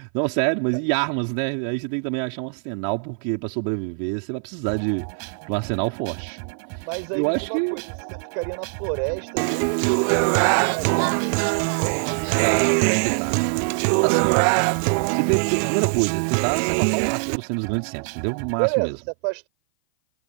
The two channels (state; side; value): silent; left; 57 dB below the other